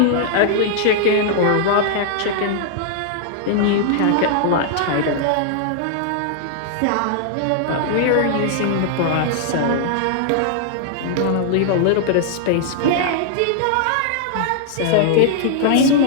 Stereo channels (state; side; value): different; both; correlation -0.01